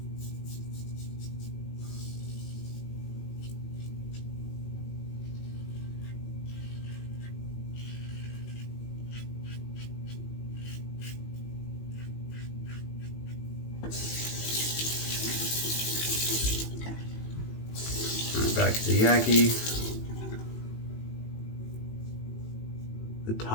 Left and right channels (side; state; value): right; late; 18 ms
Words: Back to the Yaqi. The